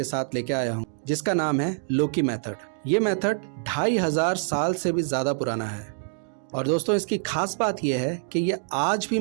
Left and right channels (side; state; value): left; silent; digital silence